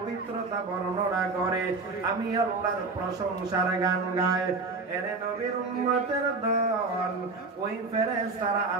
বর্ণনা করে, আমি আল্লাহর প্রশংসার গান গায়। এরে নবীর উম্মতের দল, ওই ফেরেশতারা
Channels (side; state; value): left; quieter; 3.9 dB